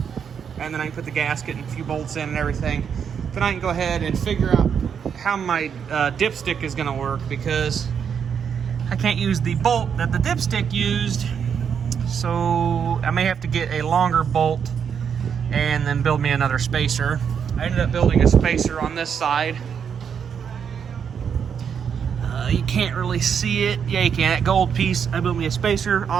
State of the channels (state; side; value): quieter; left; 7.4 dB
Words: and then I can put the gasket and a few bolts in and everything. Then I can go ahead and figure out how my dipstick is going to work, because I can't use the bolt that the dipstick used, so I may have to get a longer bolt and then build me another spacer. I ended up building a spacer on this side. You can't really see it. Yeah, you can. That gold piece, I built me a spacer